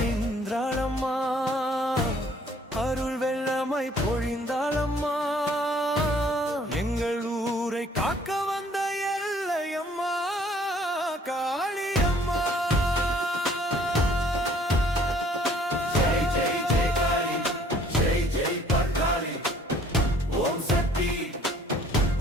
நின்றாளம்மா அருள் வெள்ளமை பொழிந்தாளம்மா எங்கள் ஊரை காக்க வந்த எல்லையம்மா காளியம்மா ஜெய் ஜெய் ஜெய் காளி ஜெய் ஜெய் பர்காளி ஓம் சக்தி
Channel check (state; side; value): normal; both; correlation 0.58